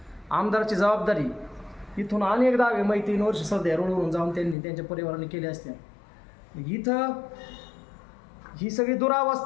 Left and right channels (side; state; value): right; drops out; at 4.5 s